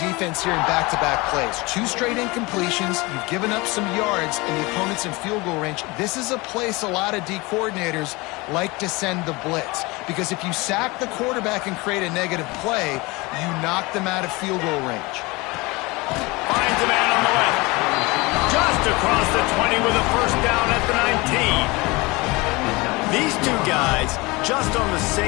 here in back-to-back plays. 2 straight incompletions. You've given up some yards, and the opponent's in field goal range. This is a place a lot of D coordinators like to send the blitz, because if you sack the quarterback and create a negative play, you knock them out of field goal range. Finds a man on the left. Just across the 20 with a first down at the 19. These two guys, just on the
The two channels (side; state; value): right; quieter; 24.0 dB